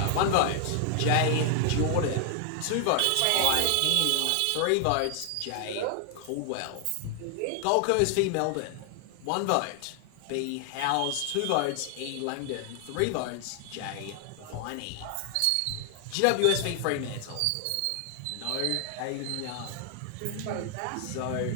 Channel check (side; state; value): both; different; correlation 0.00